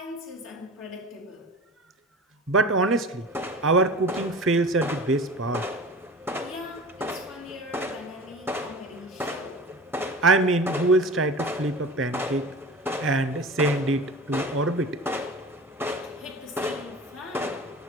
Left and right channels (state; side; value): normal; both; correlation 0.36